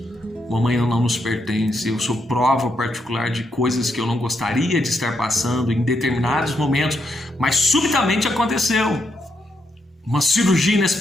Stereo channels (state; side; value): normal; both; correlation 0.80